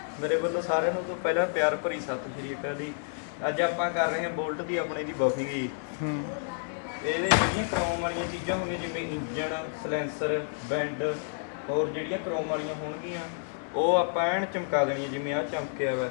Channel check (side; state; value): right; silent; digital silence